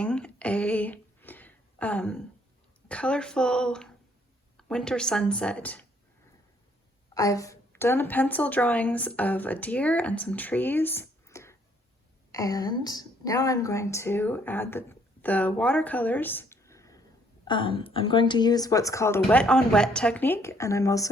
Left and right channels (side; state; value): both; normal; correlation 0.66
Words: a colorful winter sunset. I've done pencil drawings of a deer and some trees, and now I'm going to add the watercolors. I'm going to use what's called a wet on wet technique, and I'm